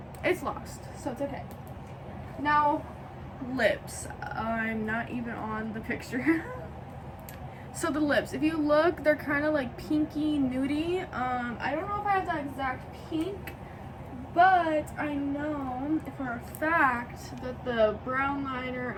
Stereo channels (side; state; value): both; identical; correlation 1.00